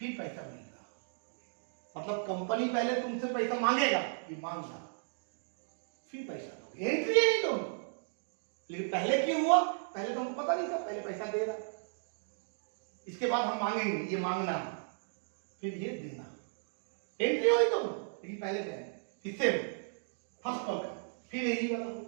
पैसा मिलेगा, मतलब कंपनी पहले तुमसे पैसा मांगेगा, ये मांग डालो, फिर पैसा दोगे, एंट्री है दोनों, लेकिन पहले क्यों हुआ, पहले तो हमको पता नहीं था, पहले पैसा दे रहा, इसके बाद हम मांगेंगे, ये मांगना फिर ये देना, एंट्री हुई दोनों, लेकिन पहले देना, इससे फर्स्ट कॉल का, फिर यही वाला होगा,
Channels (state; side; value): silent; left; digital silence